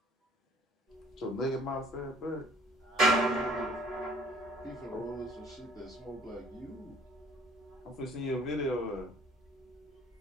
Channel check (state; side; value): normal; both; correlation 0.55